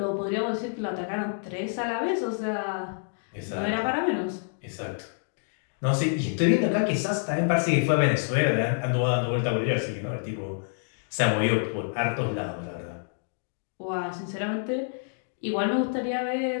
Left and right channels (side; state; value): right; silent; digital silence